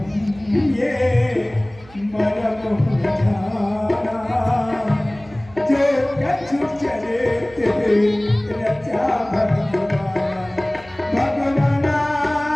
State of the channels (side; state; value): right; noise; hum, 23 dB below the sound